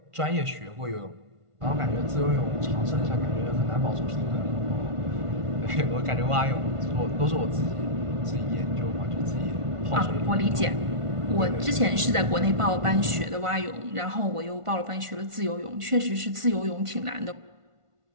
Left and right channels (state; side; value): late; left; 1.5 ms